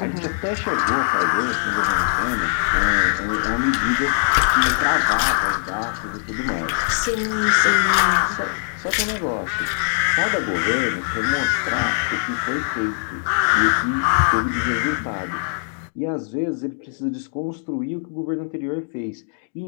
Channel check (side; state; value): right; silent; digital silence